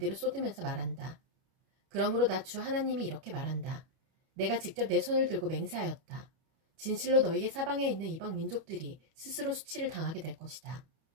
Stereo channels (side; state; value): left; late; 31 ms